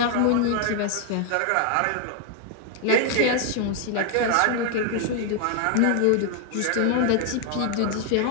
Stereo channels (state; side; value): different; both; correlation 0.00